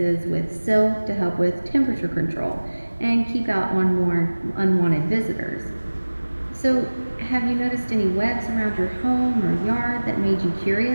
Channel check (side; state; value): both; inverted; correlation -1.00